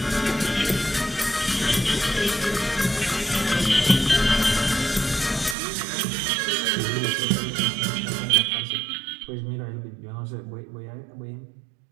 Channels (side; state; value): left; drops out; at 5.6 s